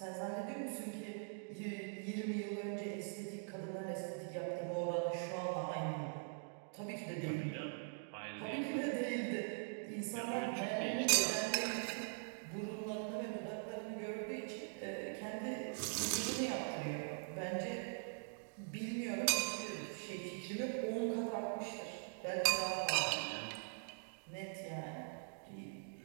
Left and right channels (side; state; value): left; silent; digital silence